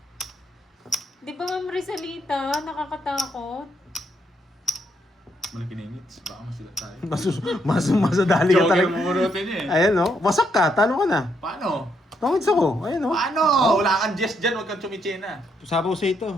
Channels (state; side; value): normal; both; correlation 0.75